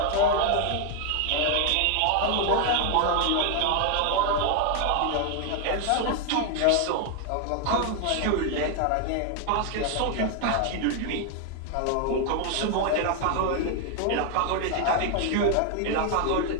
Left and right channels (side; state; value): both; different; correlation 0.01